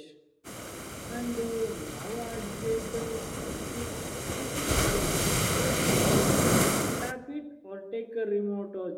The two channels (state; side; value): identical; both; correlation 1.00